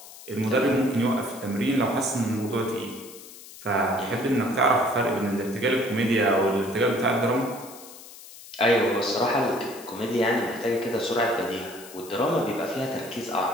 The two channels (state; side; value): noise; left; hiss, 17 dB below the sound